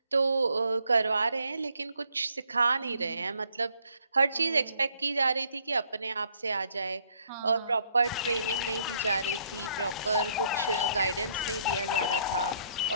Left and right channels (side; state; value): both; inverted; correlation -0.67